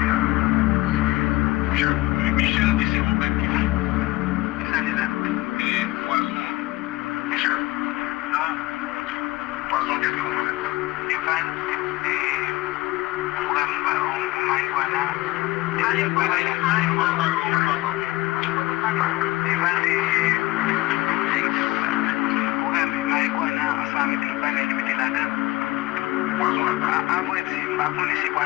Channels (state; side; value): quieter; right; 19.3 dB